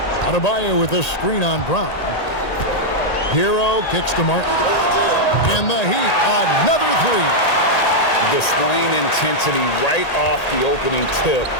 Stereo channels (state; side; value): late; right; 1.8 ms